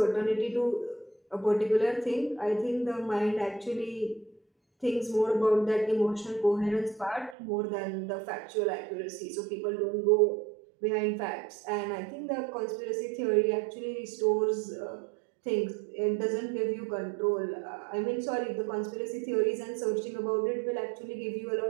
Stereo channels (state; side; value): drops out; left; at 7.4 s